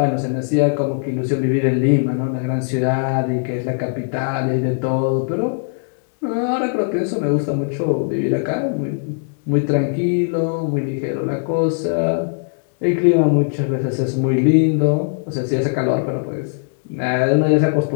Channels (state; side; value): silent; right; 65 dB below the other